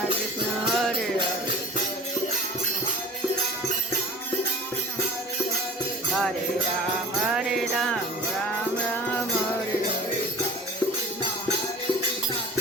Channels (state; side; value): normal; both; correlation 0.43